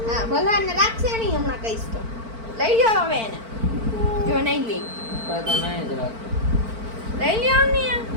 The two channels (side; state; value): left; late; 4.5 ms